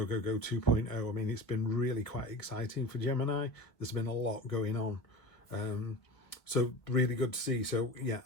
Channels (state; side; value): late; right; 1.1 ms